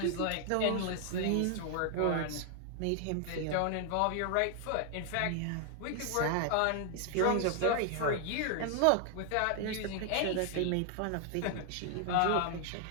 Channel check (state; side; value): different; both; correlation 0.00